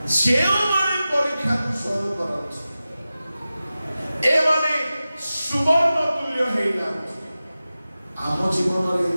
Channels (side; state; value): both; inverted; correlation -0.95